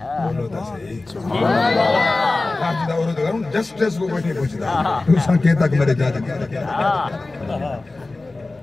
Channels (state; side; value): quieter; right; 3.2 dB